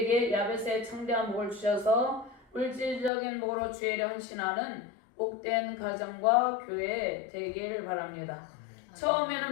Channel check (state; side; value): drops out; right; at 3.1 s